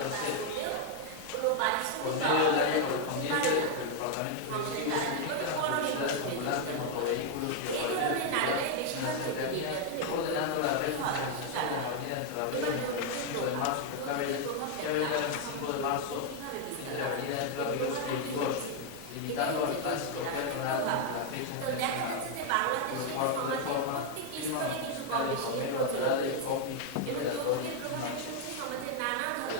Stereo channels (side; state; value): both; different; correlation 0.00